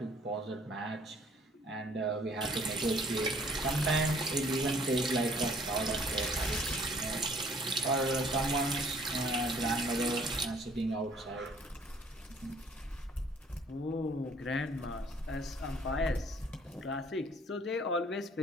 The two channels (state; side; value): normal; both; correlation 0.58